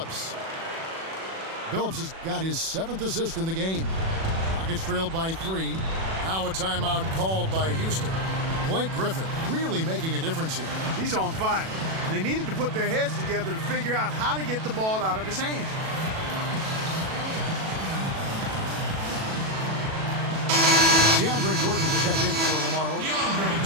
Billups has got his 7th assist in the game. Rockets trailed by 3. Now a timeout called by Houston. Blake Griffin really making a difference here. He's on fire. And they needed to put their heads together to figure out how to get the ball out of his hand. DeAndre Jordan's checked in for Lamar Odom.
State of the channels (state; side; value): late; left; 37 ms